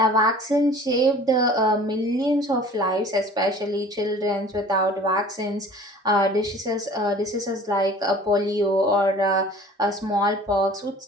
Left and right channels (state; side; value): normal; both; correlation 0.46